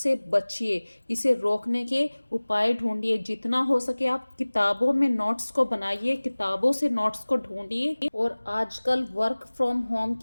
बचिए, इसे रोकने के उपाय ढूंढिए। जितना हो सके आप किताबों में नोट्स को बनाइए, किताबों से नोट्स को ढूंढिए। और आजकल वर्क फ्रॉम होम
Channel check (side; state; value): both; inverted; correlation -1.00